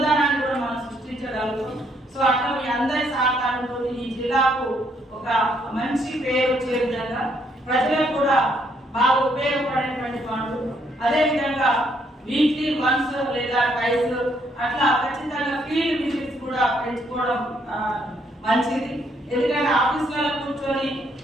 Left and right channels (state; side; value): normal; both; correlation 0.71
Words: కూడా మనం సృష్టించగలుగుతాం. సో అట్లా మీ అందరి సహకారంతో ఈ జిల్లాకు ఒక మంచి పేరు వచ్చే విధంగా ప్రజలకు కూడా బాగా ఉపయోగపడేటువంటి పనులు, అదేవిధంగా వీక్లీ వన్స్ లేదా ట్వైస్ అట్లా ఖచ్చితంగా ఫీల్డ్ విజిట్స్ కూడా పెంచుకోవడం మంచిది. ఎందుకంటే ఆఫీసులలో కూర్చొని